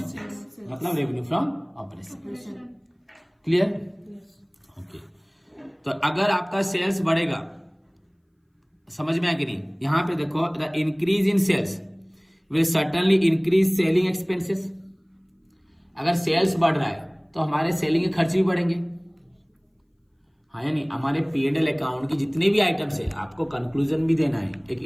सेल्स, मतलब revenue from operation. Clear? Okay, तो अगर आपका सेल्स बढ़ेगा, समझ में आया कि नहीं? यहां पे देखो, the increase in sales will certainly increase selling expenses. अगर सेल्स बढ़ रहा है तो हमारे सेलिंग के खर्च भी बढ़ेंगे, हाँ या नहीं? हमारे P&L अकाउंट की जितने भी आइटम्स है, आपको कंक्लूजन भी देना है, एक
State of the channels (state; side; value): identical; both; correlation 1.00